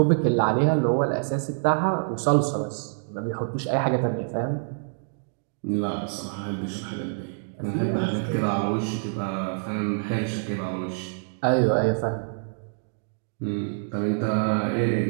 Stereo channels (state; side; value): silent; left; digital silence